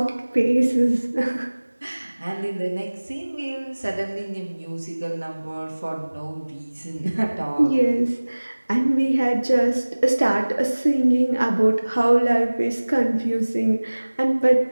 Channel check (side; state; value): both; inverted; correlation -1.00